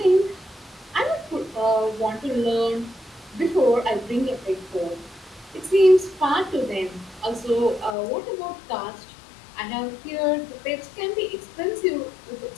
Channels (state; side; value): drops out; right; at 8.0 s